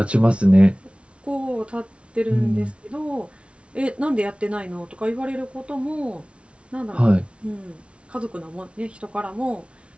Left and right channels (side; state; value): left; late; 0.060 ms